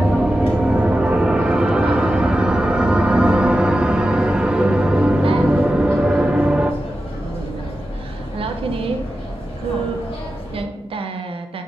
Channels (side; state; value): both; normal; correlation 0.91